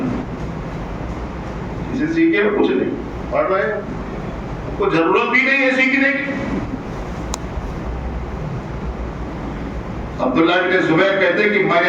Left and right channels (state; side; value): identical; both; correlation 1.00